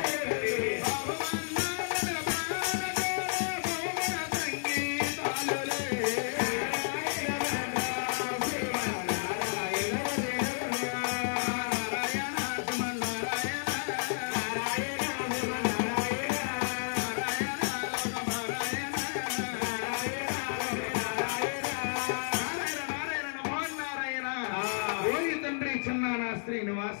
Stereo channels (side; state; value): right; silent; digital silence